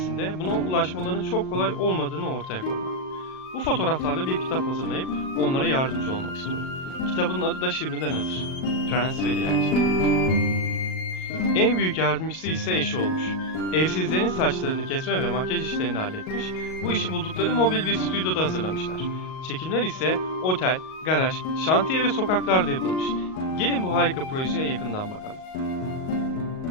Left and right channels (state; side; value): late; right; 38 ms